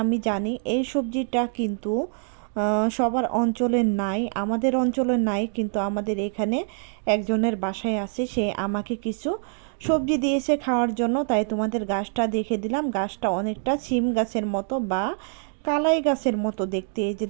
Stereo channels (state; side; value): silent; left; 62 dB below the other